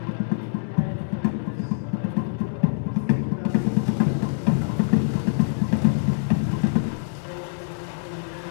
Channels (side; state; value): right; silent; digital silence